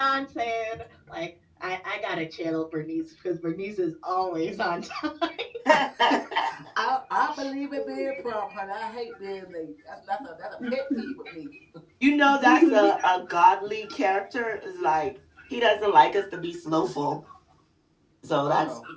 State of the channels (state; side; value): identical; both; correlation 1.00